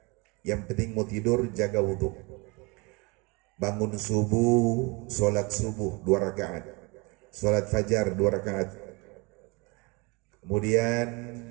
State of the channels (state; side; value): quieter; left; 27.7 dB